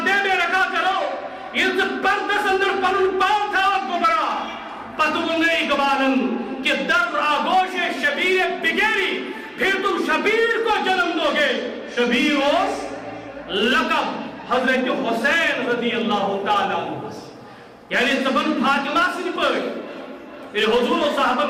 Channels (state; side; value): identical; both; correlation 1.00